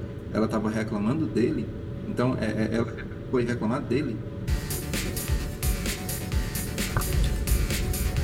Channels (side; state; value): both; identical; correlation 1.00